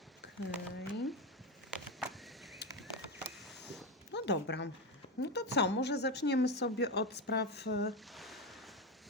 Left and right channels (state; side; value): normal; both; correlation 0.14